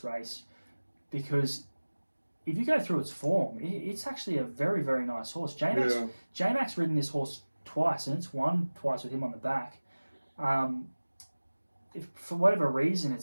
race because if you go through its form, it's actually a very, very nice horse. J-Mac's ridden this horse twice, and it's won twice with him on the back. If for whatever reason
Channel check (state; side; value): inverted; both; correlation -1.00